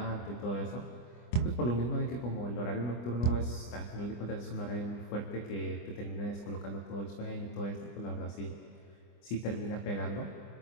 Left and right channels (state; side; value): late; right; 25 ms